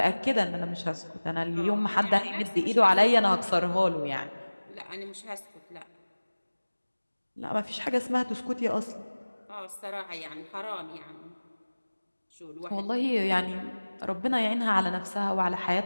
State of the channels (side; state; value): both; inverted; correlation -1.00